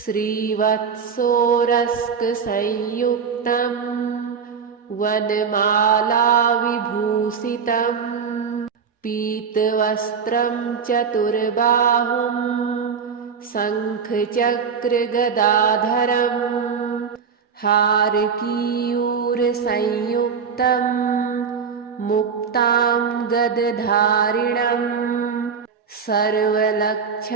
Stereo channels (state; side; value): quieter; left; 6.3 dB